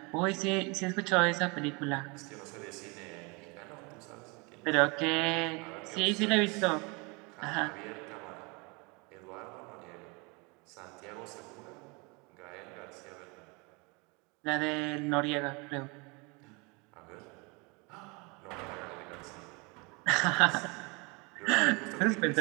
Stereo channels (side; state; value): left; quieter; 28.9 dB